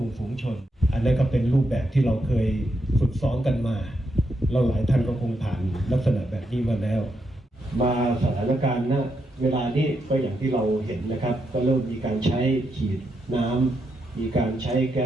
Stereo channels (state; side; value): normal; both; correlation 0.82